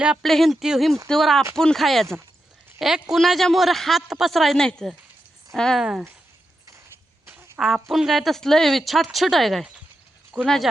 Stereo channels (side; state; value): both; normal; correlation 0.87